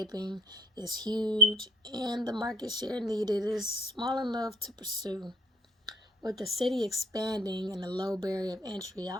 is huge, and the market share needed is small enough to pursue. With the city expanding and the low barrier of entry,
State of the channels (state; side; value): normal; both; correlation 0.57